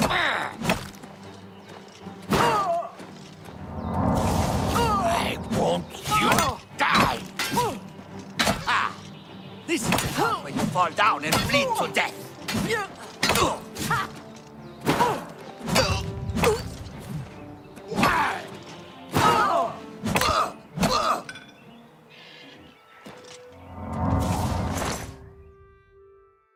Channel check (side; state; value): both; identical; correlation 1.00